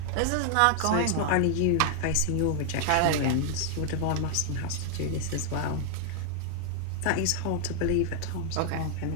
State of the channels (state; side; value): different; both; correlation 0.00